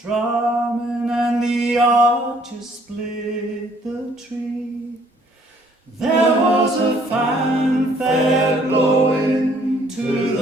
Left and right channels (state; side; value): normal; both; correlation 0.62